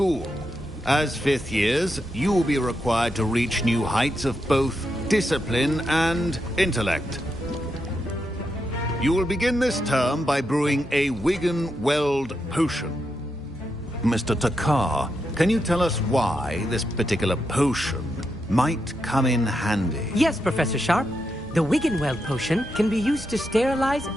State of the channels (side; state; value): both; normal; correlation 0.84